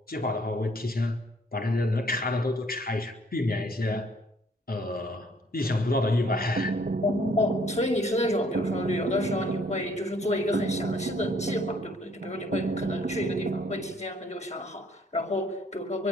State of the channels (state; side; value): normal; both; correlation 0.62